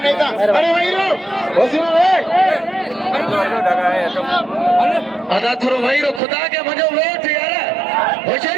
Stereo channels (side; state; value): left; drops out; at 6.2 s